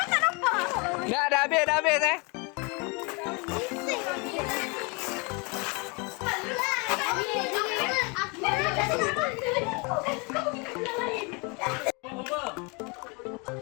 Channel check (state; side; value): quieter; right; 30.6 dB